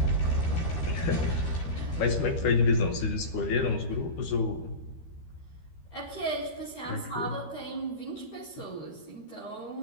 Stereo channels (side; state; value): right; late; 13 ms